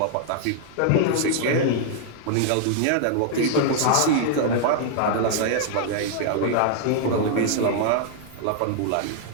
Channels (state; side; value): different; both; correlation -0.01